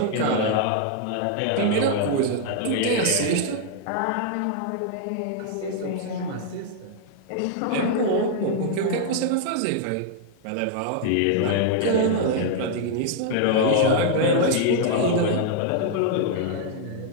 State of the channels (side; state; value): both; different; correlation 0.00